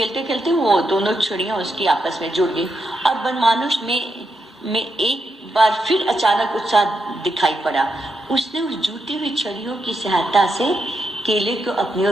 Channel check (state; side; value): normal; both; correlation 0.83